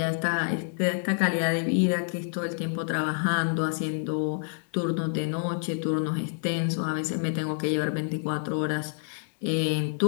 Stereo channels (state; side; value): silent; right; digital silence